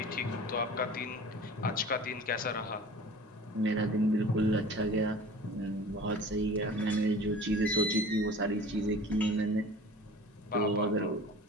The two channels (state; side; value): normal; both; correlation 0.42